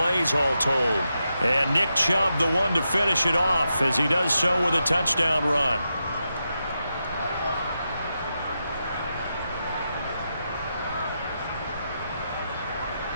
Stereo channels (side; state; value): both; inverted; correlation -0.87